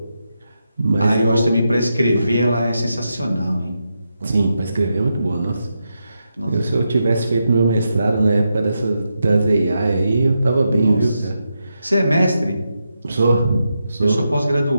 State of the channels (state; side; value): inverted; both; correlation -0.86